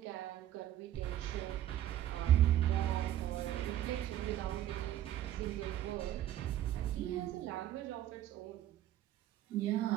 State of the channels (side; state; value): left; quieter; 12.4 dB